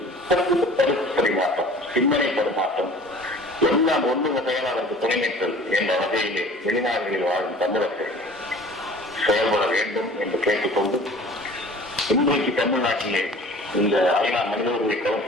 கருத்து பரிமாற்றம், சிந்தனை பரிமாற்றம் எல்லாம் ஒன்று வகையால் அதற்கு துணைநிற்றல் என்ற வகையிலே வெளிநாடுகளில் வாழும் தமிழர்கள் செயல்பட வேண்டும் என்று கேட்டுக்கொண்டு, இன்றைக்கு தமிழ்நாட்டிலே இந்த ஐநா மனித உரிமை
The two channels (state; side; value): normal; both; correlation 0.46